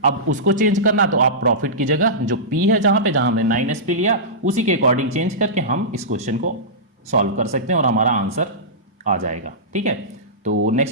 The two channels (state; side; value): normal; both; correlation -0.17